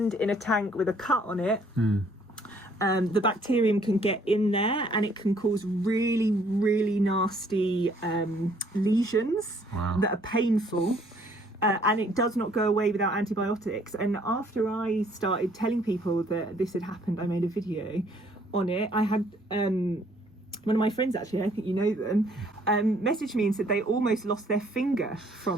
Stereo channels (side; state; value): both; normal; correlation 0.63